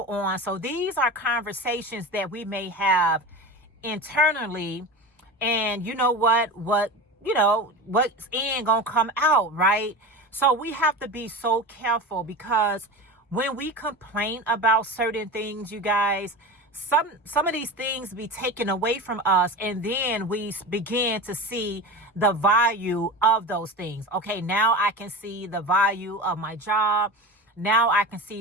on. So these are conversations that we may have internally, and you know what's in gonna come out, right? So we have to be so careful, because when we complain about certain things, you guys, some of these things be taken away from us, and then we begin to see the value of those things. Okay, now I can see the value of my job. Now I can see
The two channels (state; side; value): normal; both; correlation 0.28